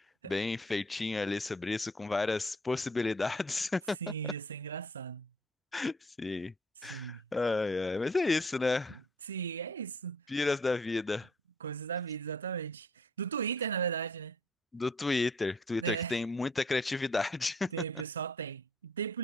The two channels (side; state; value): both; normal; correlation 0.62